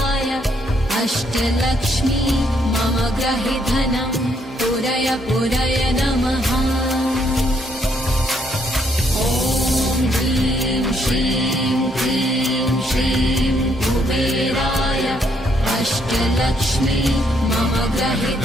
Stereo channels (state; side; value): normal; both; correlation 0.72